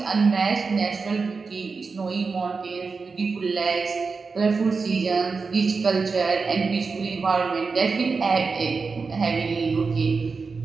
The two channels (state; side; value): quieter; left; 4.6 dB